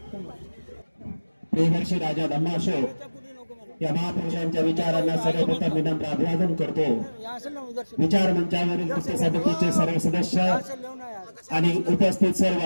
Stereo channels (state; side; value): inverted; both; correlation -1.00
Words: प्रियदर्शी राजा धम्माशो या महापुरुषांच्या विचारांना सर्वप्रथम विनम्र अभिवादन करतो. विचार मंचावरील मुख्य समितीचे सर्व सदस्य आणि उपस्थित सर्व